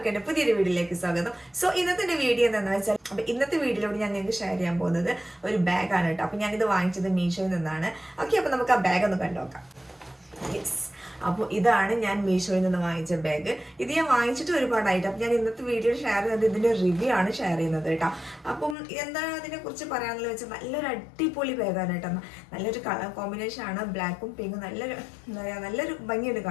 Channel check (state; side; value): drops out; right; at 18.8 s